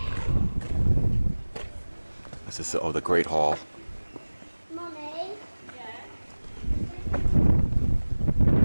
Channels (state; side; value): inverted; both; correlation -1.00